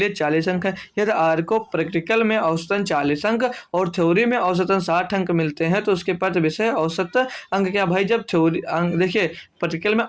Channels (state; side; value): identical; both; correlation 1.00